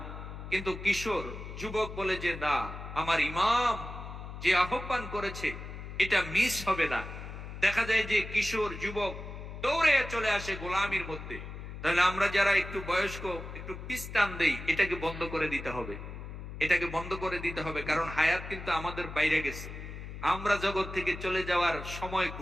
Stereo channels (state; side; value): noise; left; hum, 10 dB below the sound